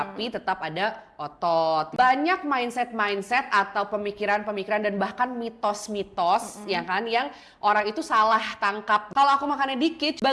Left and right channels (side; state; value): both; identical; correlation 1.00